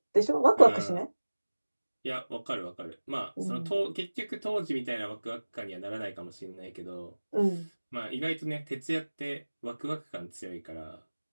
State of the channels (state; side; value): inverted; both; correlation -1.00